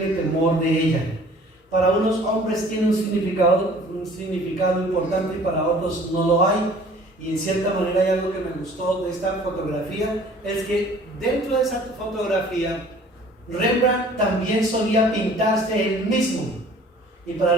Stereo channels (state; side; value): normal; both; correlation 0.51